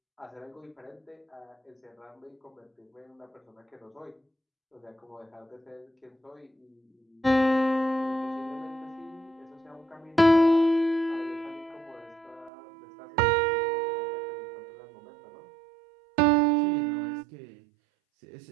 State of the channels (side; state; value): left; drops out; at 12.5 s